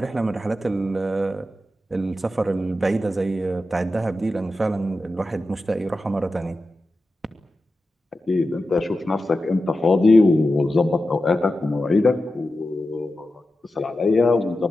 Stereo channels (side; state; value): both; normal; correlation 0.92